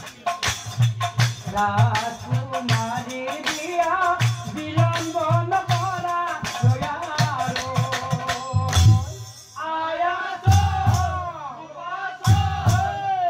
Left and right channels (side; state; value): both; identical; correlation 1.00